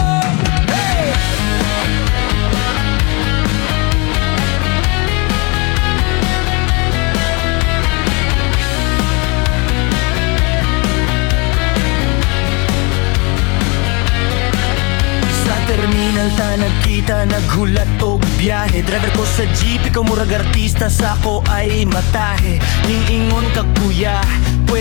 Terminal ta nagkita, naghulat og biyahe. Driver ko sa jeep, ikaw murag artista, sa ko ay matahe. Ning ingon ka kuya,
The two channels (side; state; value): right; quieter; 30.1 dB